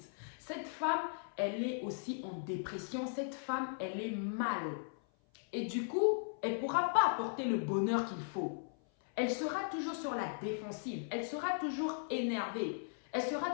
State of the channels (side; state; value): right; silent; 53 dB below the other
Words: Cette femme, elle est aussi en dépression. Cette femme, elle est mal. Et du coup, elle ne pourra pas apporter le bonheur qu'il faut. Elle sera toujours sur la défensive. Elle sera toujours énervée. Elle sera